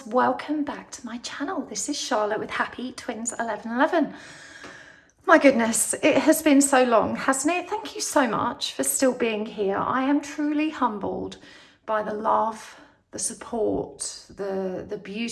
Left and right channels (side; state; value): both; identical; correlation 1.00